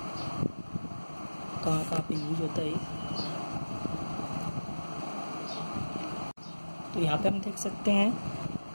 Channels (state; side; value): inverted; both; correlation -1.00